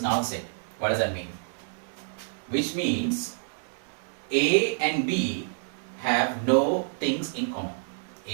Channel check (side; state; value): left; silent; 59 dB below the other